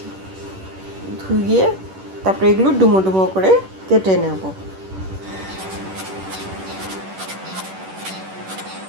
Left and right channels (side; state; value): left; late; 10 ms